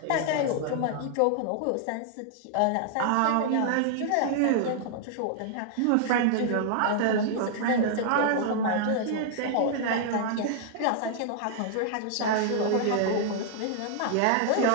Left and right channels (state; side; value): different; both; correlation -0.01